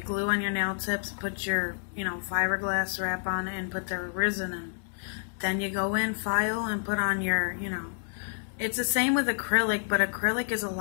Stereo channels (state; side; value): silent; right; 58 dB below the other